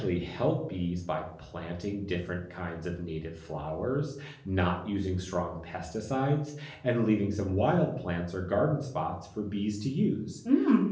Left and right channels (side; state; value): both; identical; correlation 1.00